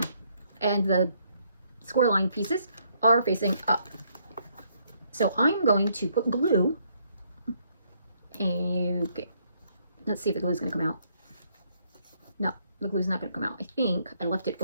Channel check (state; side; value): inverted; both; correlation -0.71